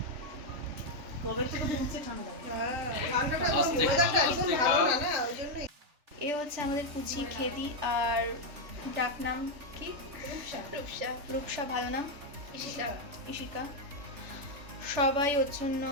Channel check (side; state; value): left; late; 3.4 ms